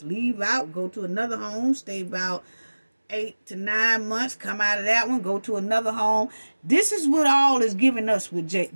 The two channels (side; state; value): both; inverted; correlation -1.00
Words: leave out, go to another home, stay about 8 to 9 months, come out of that one, go to another home. This is what all is giving us with